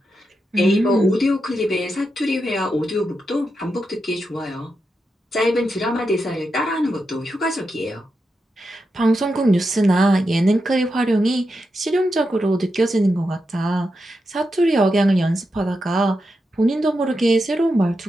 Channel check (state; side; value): normal; both; correlation 0.87